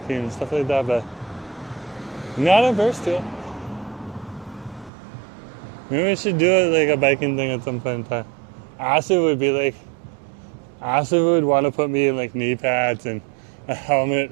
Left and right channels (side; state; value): left; drops out; at 4.9 s